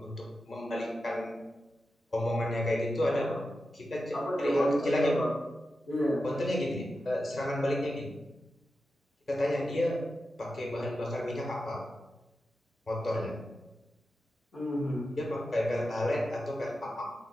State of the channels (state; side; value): normal; both; correlation 0.90